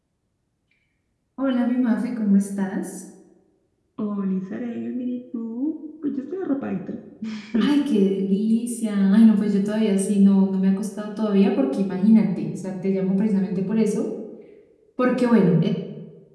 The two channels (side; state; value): both; identical; correlation 1.00